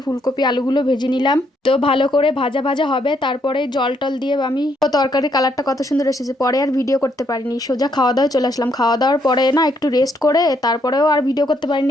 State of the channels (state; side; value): normal; both; correlation 0.73